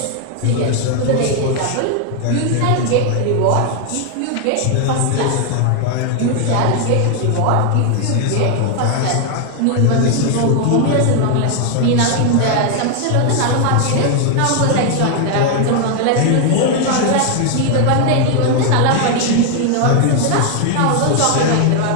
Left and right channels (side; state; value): both; different; correlation 0.00